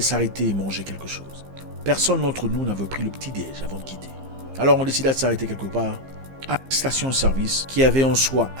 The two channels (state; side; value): late; left; 15 ms